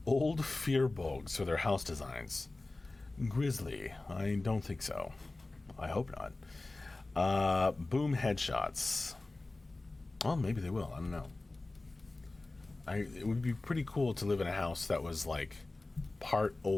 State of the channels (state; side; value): quieter; right; 3.0 dB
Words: old fear bogs for their house designs. Grizzly. I don't think so. I hope not. Boom headshots. Well, maybe they will. I don't know. It would be pretty cool to live in a house that was like part